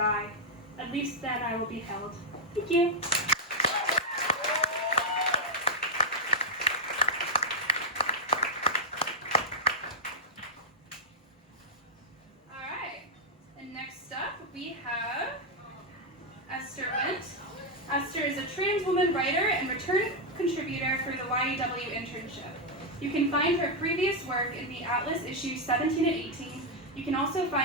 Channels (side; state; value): both; normal; correlation 0.00